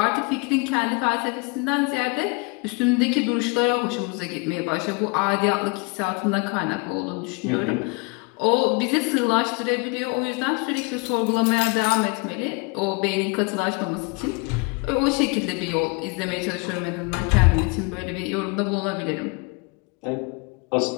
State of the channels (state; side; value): quieter; right; 30.3 dB